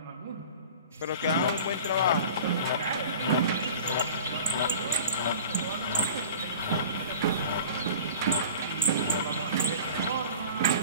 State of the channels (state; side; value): inverted; both; correlation -0.40